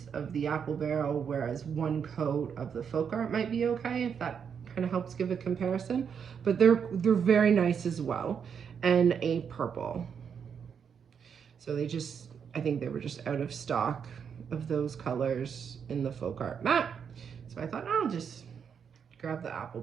of the Apple Barrel, whereas 1 coat of the Folk Art might be okay, if that kind of helps give a comparison. But they're very nice as well. And a purple. So I think they were just out of stock of those colors in the Folk Art Matte. So I thought I'll just grab the Apple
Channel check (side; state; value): left; quieter; 7.1 dB